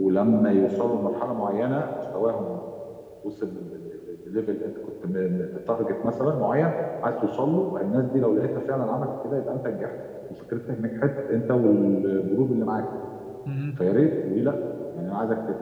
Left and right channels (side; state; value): both; identical; correlation 1.00